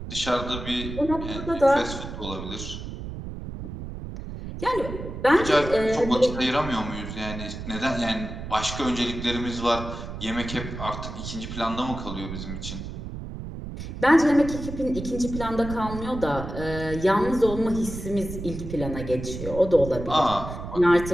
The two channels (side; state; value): right; noise; rumble, 8 dB below the sound